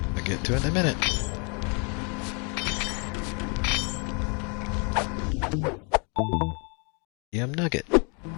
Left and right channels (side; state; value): right; quieter; 35.8 dB